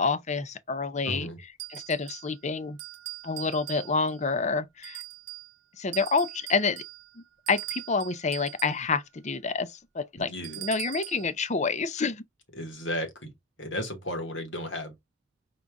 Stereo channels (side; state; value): right; quieter; 3.4 dB